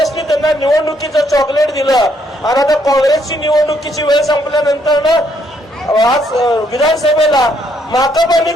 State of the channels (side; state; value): both; normal; correlation 0.71